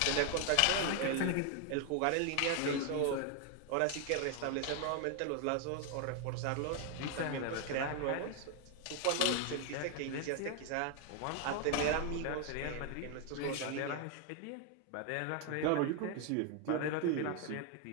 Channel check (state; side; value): different; both; correlation 0.00